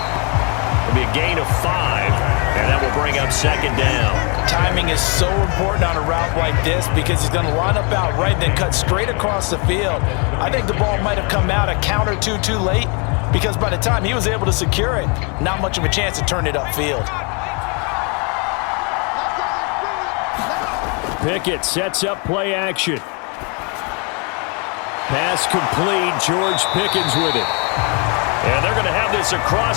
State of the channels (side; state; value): right; quieter; 34.1 dB